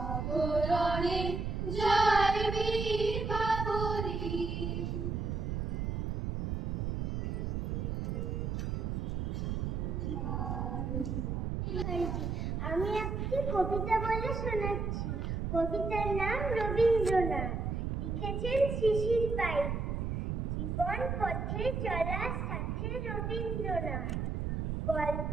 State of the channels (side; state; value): right; noise; rumble, 1 dB below the sound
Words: আমি একটি কবিতা বলে শোনাচ্ছি। কবিতার নাম রবীন্দ্রনাথ, লিখেছেন শিশির পাই। জীবন পথে চলার সাথে রবীন্দ্রনাথ, গল্প